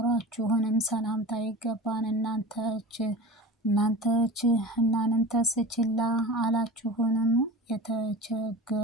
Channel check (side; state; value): both; normal; correlation 0.33